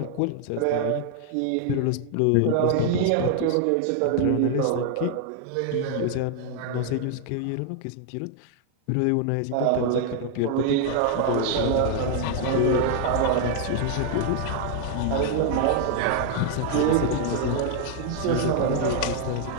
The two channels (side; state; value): both; different; correlation 0.00